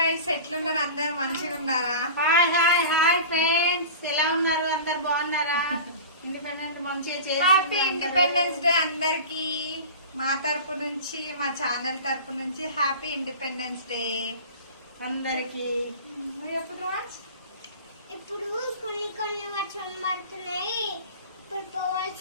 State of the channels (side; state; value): both; inverted; correlation -0.35